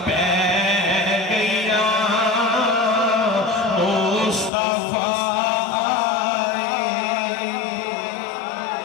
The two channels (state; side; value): drops out; right; at 4.5 s